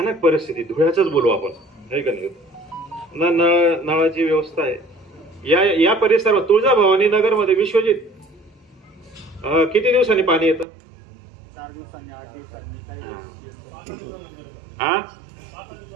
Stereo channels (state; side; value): drops out; left; at 10.7 s